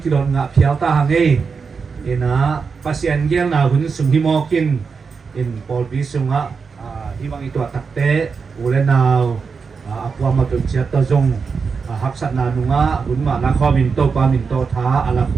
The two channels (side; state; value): left; quieter; 5.3 dB